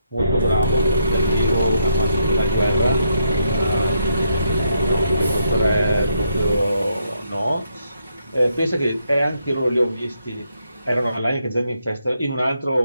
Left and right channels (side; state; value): both; inverted; correlation -0.77